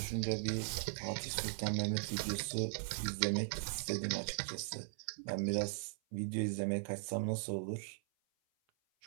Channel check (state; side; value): silent; left; 52 dB below the other